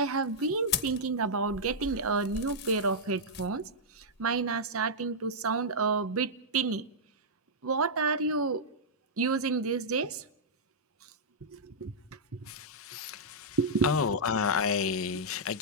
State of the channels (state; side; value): normal; both; correlation -0.09